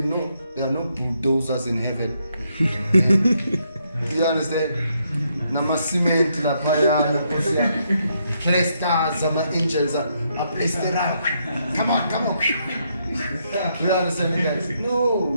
know there are no bulldozers in heaven. Do you understand? Nama cement la paya, stars, angels are placed around. Come on. Do you understand, guys?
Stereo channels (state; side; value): inverted; both; correlation -0.76